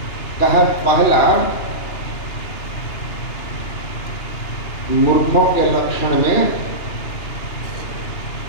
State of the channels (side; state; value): right; late; 2.8 ms